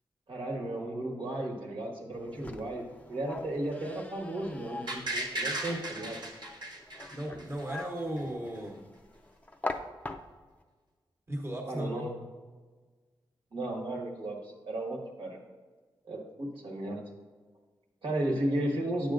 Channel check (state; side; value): normal; both; correlation 0.75